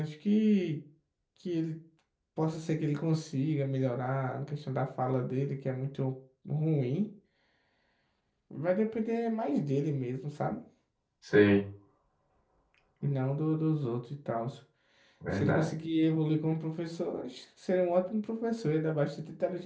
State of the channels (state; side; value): identical; both; correlation 1.00